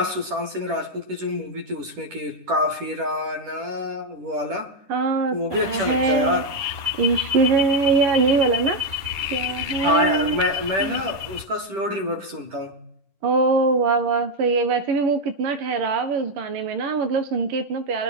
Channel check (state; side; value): late; left; 10 ms